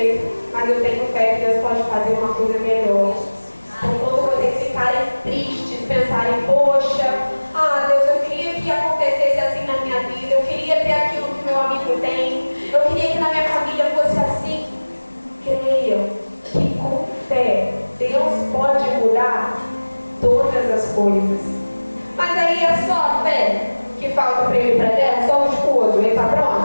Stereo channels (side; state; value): both; inverted; correlation -1.00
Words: Mas eu tenho fé que Deus pode fazer uma coisa melhor. Então, quando vocês ficarem tristes, pensarem, poxa, Deus, eu queria que acontecesse assim na minha vida, eu queria ter aquilo que meu amigo tem, eu queria que na minha família fosse assim. Creiam que com fé Deus pode mudar todas as coisas. Mas aí é só a fé que falta para ele ir para a terra? Só o esposo, ele está